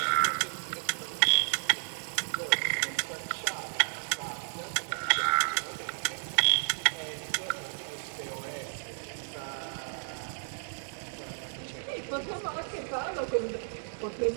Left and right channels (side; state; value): left; silent; digital silence